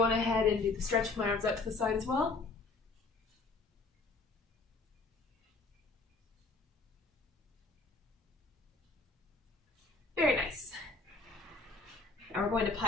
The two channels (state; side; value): quieter; right; 3.7 dB